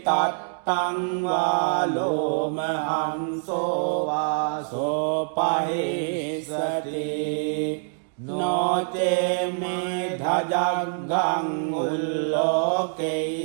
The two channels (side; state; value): left; silent; digital silence